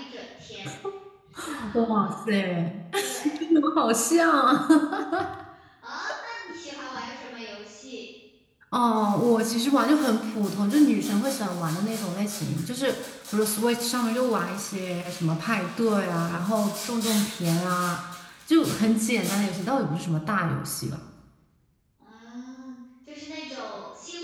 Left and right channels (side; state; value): both; identical; correlation 1.00